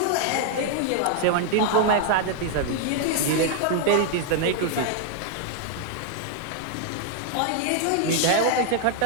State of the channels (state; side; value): different; both; correlation -0.01